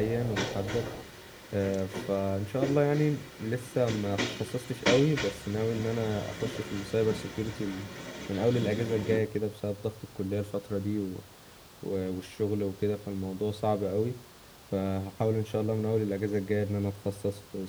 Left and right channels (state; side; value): identical; both; correlation 1.00